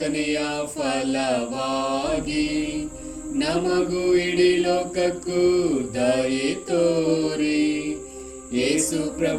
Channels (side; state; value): both; identical; correlation 1.00